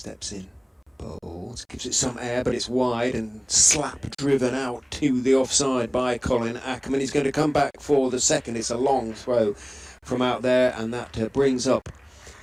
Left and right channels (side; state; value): both; identical; correlation 1.00